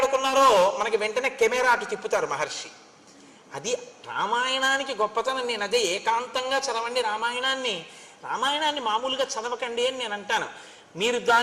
మనకి వెంటనే కెమెరా అటు తిప్పుతారు మహర్షి. అది రామాయణానికి గొప్పతనం. నేను అదే ఏకాంతంగా చదవండి రామాయణాన్ని, రామాయణాన్ని మామూలుగా చదవకండి అని నేను అంటాను. మీరు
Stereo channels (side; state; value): both; identical; correlation 1.00